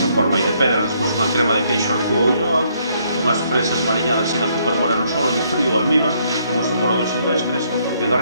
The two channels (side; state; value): both; inverted; correlation -0.70